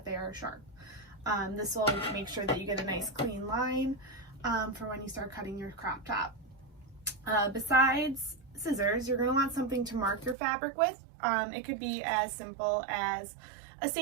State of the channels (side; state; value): left; drops out; at 10.4 s